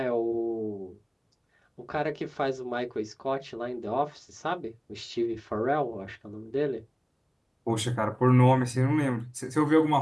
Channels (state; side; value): identical; both; correlation 1.00